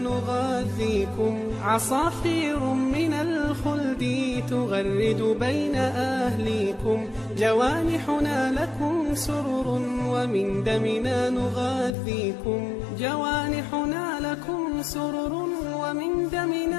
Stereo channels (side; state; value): right; drops out; at 12.0 s